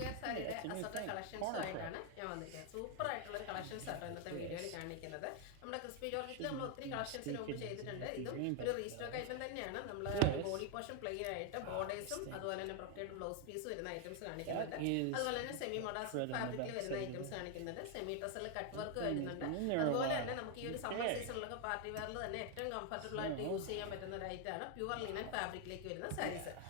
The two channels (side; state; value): both; different; correlation 0.01